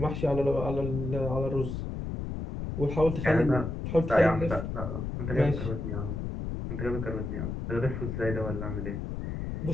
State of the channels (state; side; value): noise; left; rumble, 4 dB below the sound